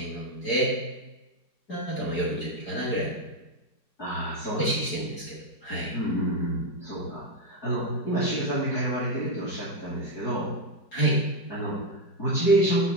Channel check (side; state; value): right; late; 4.8 ms